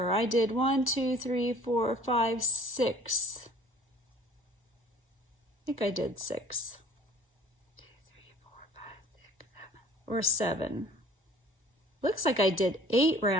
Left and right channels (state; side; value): normal; both; correlation 0.50